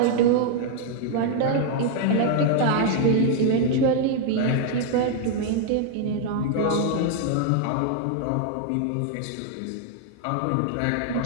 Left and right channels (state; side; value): different; both; correlation 0.00